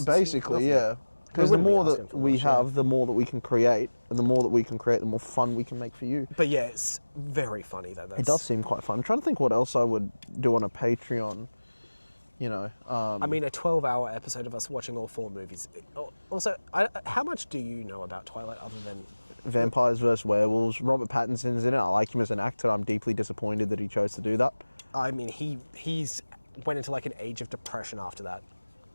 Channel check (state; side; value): inverted; both; correlation -1.00